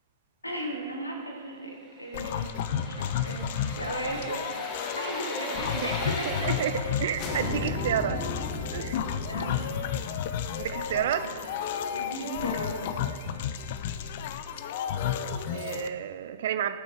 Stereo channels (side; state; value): both; inverted; correlation -0.32